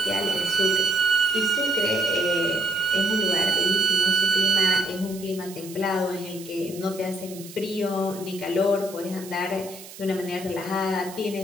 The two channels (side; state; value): right; noise; hiss, 16 dB below the sound